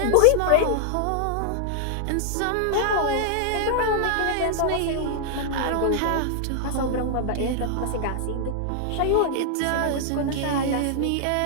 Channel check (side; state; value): both; different; correlation -0.01